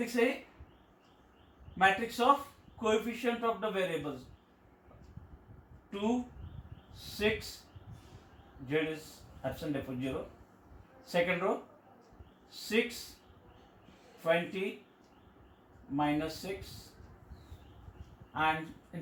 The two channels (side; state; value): both; identical; correlation 1.00